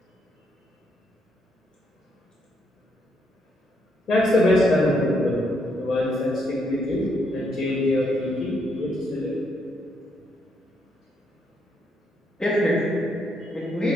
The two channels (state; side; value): normal; both; correlation 0.75